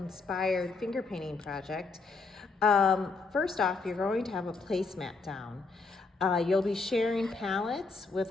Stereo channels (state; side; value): quieter; right; 4.1 dB